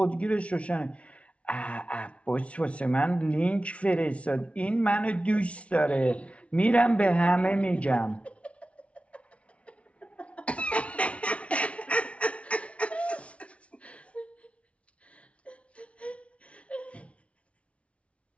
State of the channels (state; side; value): late; right; 0.062 ms